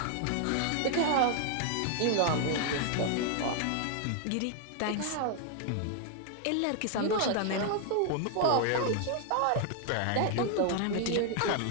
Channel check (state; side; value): different; both; correlation 0.00